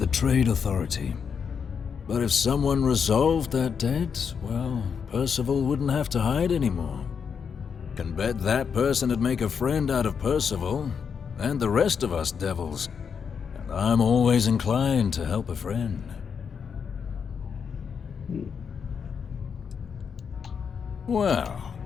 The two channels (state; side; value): quieter; right; 6.6 dB